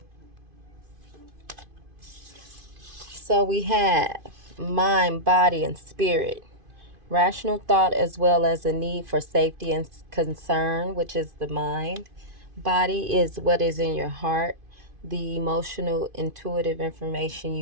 So we have mind, body, and spirit. Rational thought as well as a need for safety and concern, which is the mind. Body is what is in your heart, the emotional, intuitive information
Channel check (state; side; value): late; left; 2.5 ms